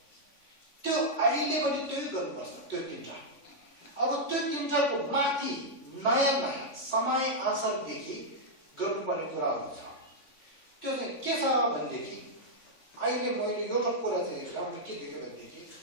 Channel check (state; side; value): late; right; 3.5 ms